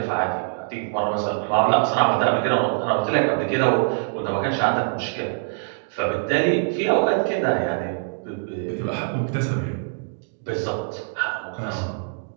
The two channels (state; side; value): silent; left; digital silence